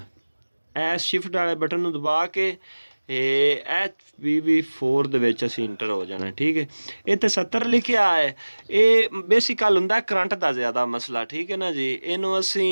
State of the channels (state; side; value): inverted; both; correlation -1.00